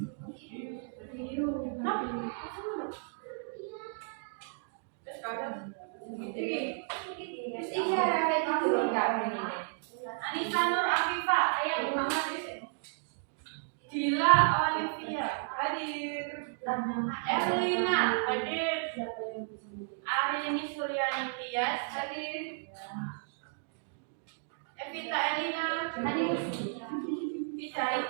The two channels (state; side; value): silent; left; digital silence